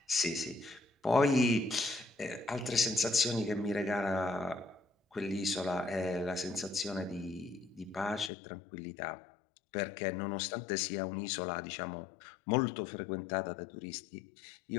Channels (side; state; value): right; drops out; at 8.3 s